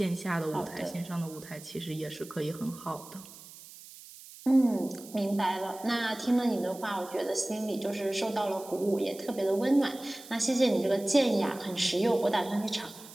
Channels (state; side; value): noise; right; hiss, 18 dB below the sound